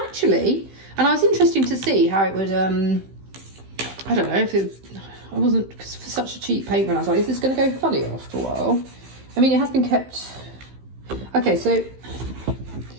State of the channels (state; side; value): late; left; 15 ms